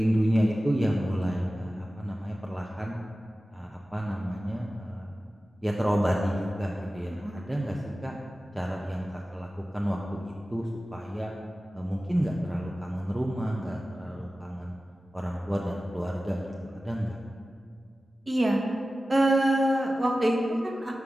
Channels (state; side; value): normal; both; correlation 0.95